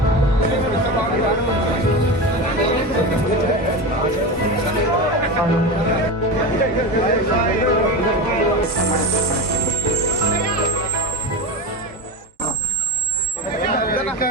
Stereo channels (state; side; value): normal; both; correlation 0.22